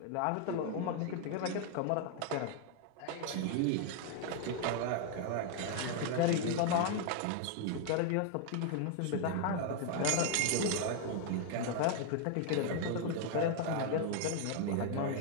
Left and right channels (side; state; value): both; different; correlation 0.00